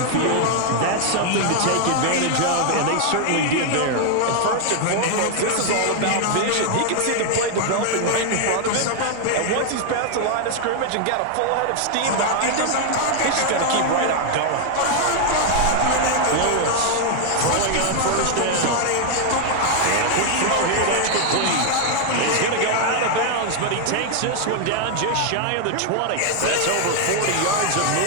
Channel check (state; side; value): different; both; correlation 0.00